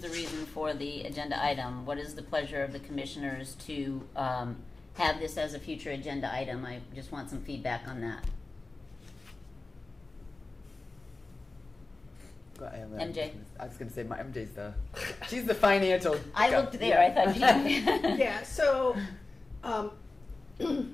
reason for the agenda item. What is the pleasure of the commissioners to have this as a future agenda item? I just want some feedback on that. MJ. I was going to say she's the financial. I looked there. I thought. Yeah. So,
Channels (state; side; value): quieter; right; 3.3 dB